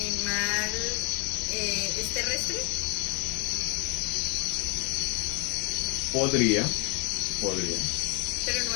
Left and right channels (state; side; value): quieter; right; 30.8 dB